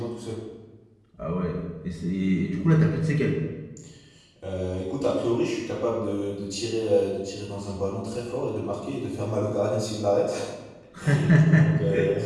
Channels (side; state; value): both; identical; correlation 1.00